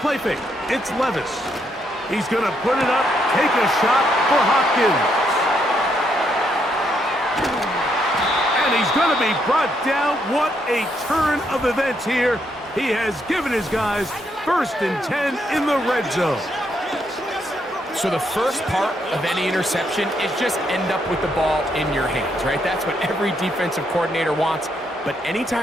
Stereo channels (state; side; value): normal; both; correlation 0.76